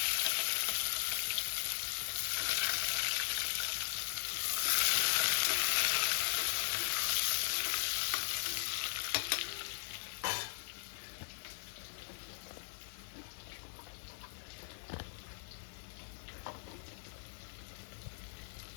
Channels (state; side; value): silent; right; digital silence